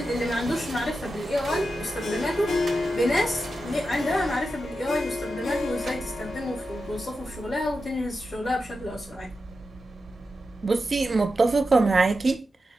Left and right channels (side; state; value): both; normal; correlation 0.90